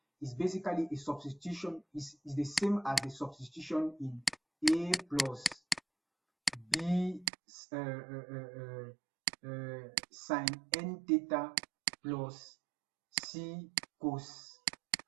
is basically a substitution, is the same as the substitution in a plus b sine n theta plus c cos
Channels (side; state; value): left; drops out; at 7.3 s